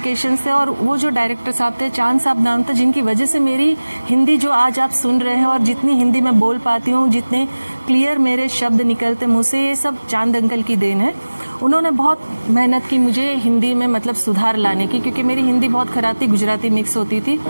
थे। और वो जो डायरेक्टर साहब थे, चांद साहब नाम था, जिनकी वजह से मेरी हिंदी जो आज आप सुन रहे हैं और जितनी हिंदी मैं बोल पाती हूँ, जितने क्लियर मेरे शब्द निकलते मुँह से, ये सब चांद अंकल की देन है। उन्होंने बहुत मेहनत की मुझे हिंदी में मतलब सुधार लाने की, क्योंकि मेरी हिंदी बहुत खराब थी, गुजराती मिक्स होती थी,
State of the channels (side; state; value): both; inverted; correlation -1.00